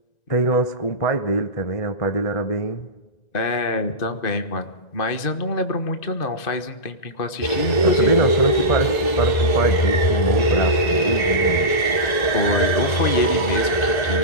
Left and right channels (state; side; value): late; right; 1.9 ms